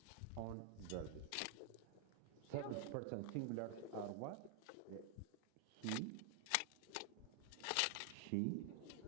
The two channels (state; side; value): different; both; correlation 0.00